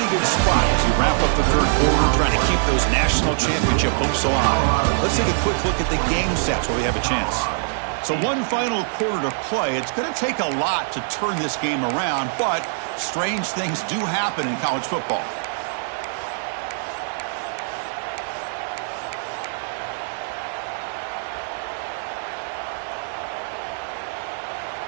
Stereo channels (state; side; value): silent; left; 63 dB below the other